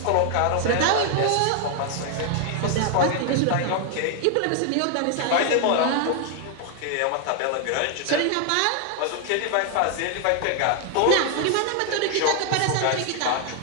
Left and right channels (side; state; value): both; different; correlation 0.00